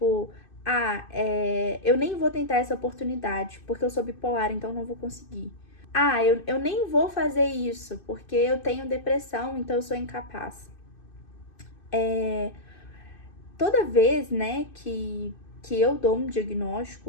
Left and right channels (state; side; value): late; right; 2.6 ms